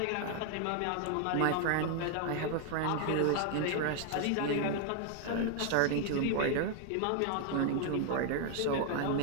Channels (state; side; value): different; both; correlation 0.00